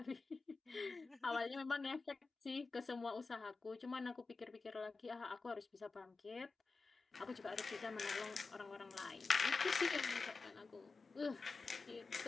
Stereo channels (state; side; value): quieter; right; 4.3 dB